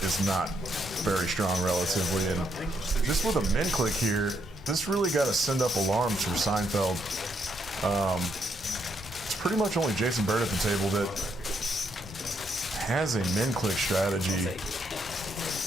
is not very strong relatively. And just with a min click here, this really got to send up alarms for Seinfeld. It's pretty much only Jason Bird at the table that has a min click strategy.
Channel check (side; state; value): both; normal; correlation 0.76